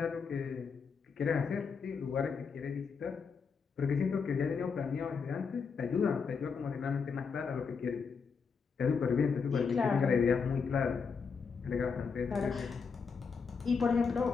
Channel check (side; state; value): right; quieter; 5.6 dB